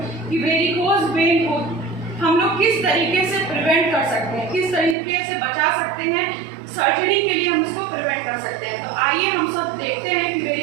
कि वेरिकोज वेन को हम लोग किस तरीके से प्रिवेंट कर सकते हैं, किस तरीके से बचा सकते हैं, सर्जरी के लिए हम इसको प्रिवेंट कर सकते हैं। तो आइए हम सब देखते हैं कि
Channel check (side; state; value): left; drops out; at 5.0 s